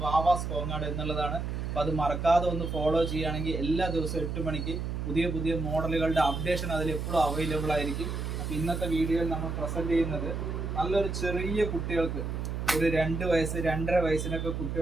വാവാസ് കോങ്ങാട് എന്നുള്ളതാണ്. അപ്പോൾ അത് മറക്കാതെ ഒന്ന് ഫോളോ ചെയ്യുകയാണെങ്കിൽ എല്ലാ ദിവസവും 8 മണിക്ക് പുതിയ പുതിയ മോഡലുകളുടെ അപ്ഡേഷൻ അതിൽ എപ്പോഴും അവൈലബിൾ ആയിരിക്കും. അപ്പോൾ ഇന്നത്തെ വീഡിയോയിൽ നമ്മൾ പ്രസൻറ്റ് ചെയ്യുന്നത് നല്ലൊരു ചെറിയ കുട്ടികൾക്ക് ഒരു 2 വയസ്സ് 2.5 വയസ്സിനൊക്കെ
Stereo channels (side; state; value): right; noise; hum, 3 dB below the sound